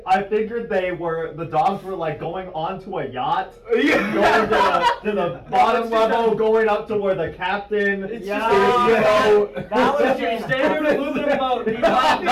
I figured the dogs were like going onto a yacht, Yeah. going to the bottom level, going up to where the captain is. Yeah. That was your standard aluminum boat. You got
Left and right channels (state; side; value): identical; both; correlation 1.00